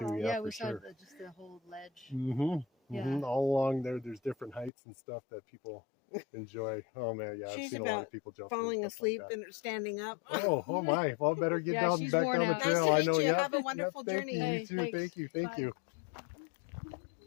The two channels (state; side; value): drops out; right; at 4.7 s